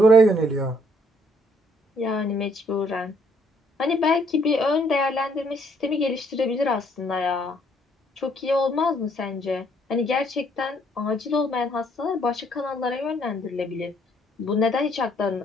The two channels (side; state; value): both; normal; correlation 0.67